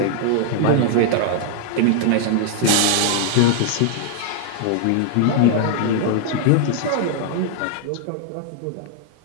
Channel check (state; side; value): different; both; correlation -0.01